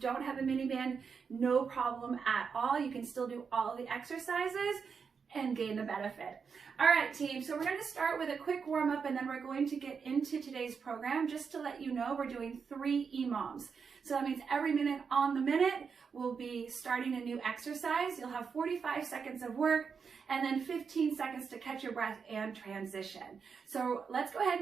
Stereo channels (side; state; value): left; quieter; 5.9 dB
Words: have a mini band, no problem at all. You can still do all the exercises and gain the benefit. All right, team, so we're going to start with a quick warm-up and then we're going to get into today's program. Just to let you know, we're doing 3 EMOMs. So that means every minute on the minute, we'll be starting a new exercise. You'll have 45 seconds of work and then 15 seconds to catch your breath and transition. So let's go ahead